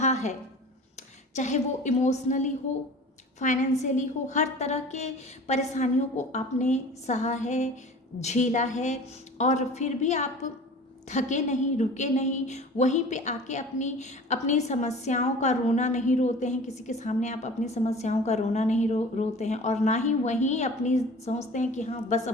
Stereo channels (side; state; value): both; normal; correlation 0.41